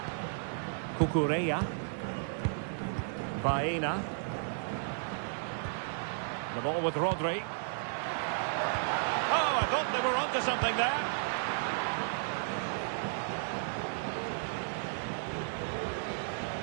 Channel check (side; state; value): left; silent; 55 dB below the other